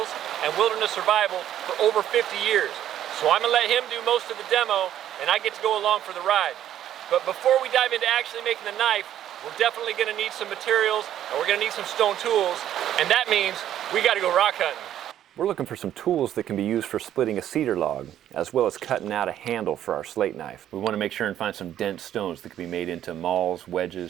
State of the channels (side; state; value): left; quieter; 11.3 dB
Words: and wilderness survival for over 50 years. So I'm gonna let him do most of the demo and I get to go along for the ride. But before we dive into actually making the knife, we're definitely gonna need some materials and we're gonna need some stone tools, and that means we gotta go rock hunting. We're looking for some tools that can be used for splitting a cedar log, as well as cutting out a handle for our slate knife. We want to make sure and find some dense stones that can be made into mauls,